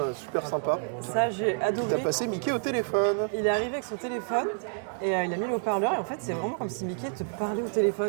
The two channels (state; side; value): silent; left; digital silence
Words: super sympa, Ça, j'ai adoré. t'as passé Mickey au téléphone. Il est arrivé avec son téléphone et il a mis le haut-parleur et en fait c'est vraiment comme si Mickey te parlait au